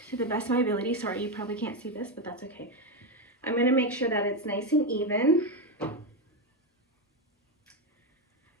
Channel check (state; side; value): normal; both; correlation 0.09